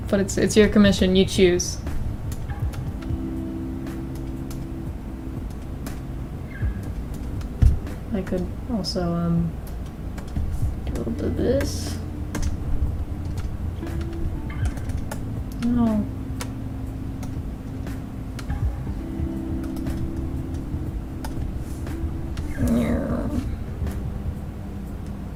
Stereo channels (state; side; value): identical; both; correlation 1.00